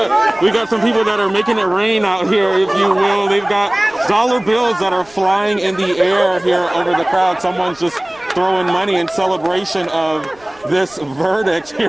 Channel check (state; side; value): noise; right; rumble, 29 dB below the sound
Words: We got some people that are making it rain out here, if you will. They've got dollar bills that are flying in the air here over the crowd. Someone's just throwing money in celebration of this verdict